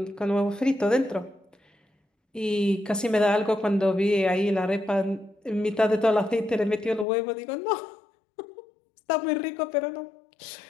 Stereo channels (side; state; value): right; drops out; at 7.1 s